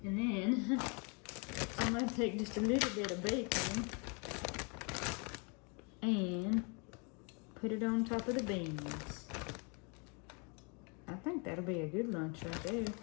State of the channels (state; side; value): quieter; right; 33.9 dB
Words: And then I'm going to take just a little bit of bacon and put it on top of the beans. I think that'll be a good lunch right there.